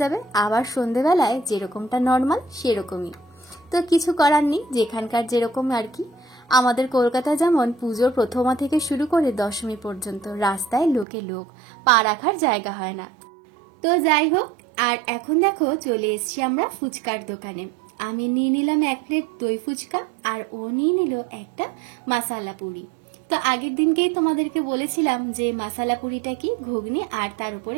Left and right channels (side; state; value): left; drops out; at 11.1 s